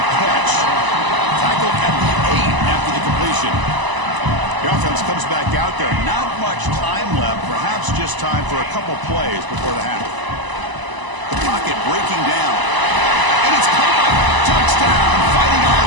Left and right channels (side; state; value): left; late; 1.0 ms